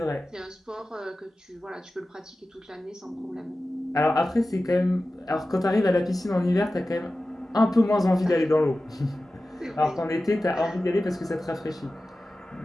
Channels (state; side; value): normal; both; correlation 0.95